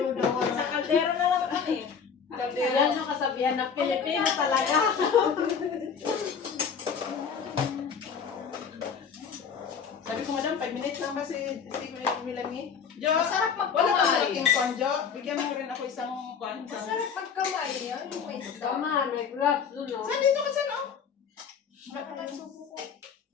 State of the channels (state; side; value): quieter; right; 6.6 dB